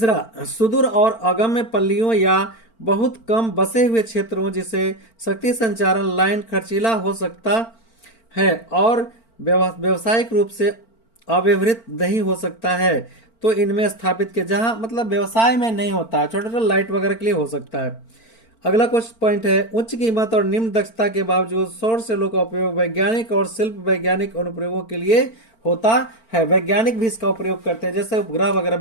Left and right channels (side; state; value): right; late; 4.4 ms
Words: सुदूर और अगम्य पल्लियों या बहुत कम बसे हुए क्षेत्रों जिसे शक्ति संचारण लाइन खर्चीला हो सकता है और व्यवसायिक रूप से अव्यवहृत नहीं हो सकता है, तो इनमें स्थापित के जहां मतलब व्यवसाय में नहीं होता है, छोटे छोटे लाइट वगैरह के लिए हो सकता है। अगला क्वेश्चन पॉइंट है, उच्च कीमत और निम्न दक्षता के बावजूद सौर सेलों का उपयोग वैज्ञानिक और शिल्प वैज्ञानिक अनुप्रयोगों के लिए होता है। वैज्ञानिक भी इसका उपयोग करते हैं, जैसे उपग्रह वगैरह